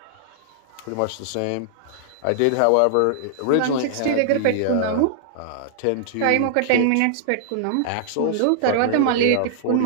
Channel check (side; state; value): both; different; correlation -0.01